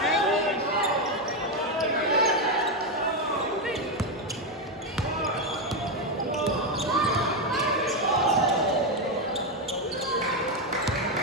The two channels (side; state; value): both; normal; correlation 0.07